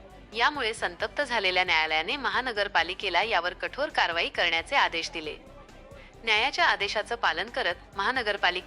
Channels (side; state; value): both; identical; correlation 1.00